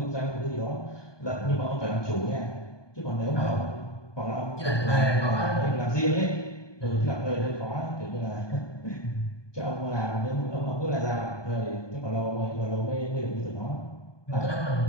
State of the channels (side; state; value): right; late; 1.2 ms